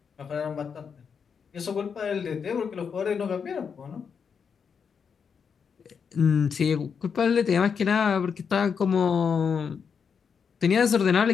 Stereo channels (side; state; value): right; quieter; 6.5 dB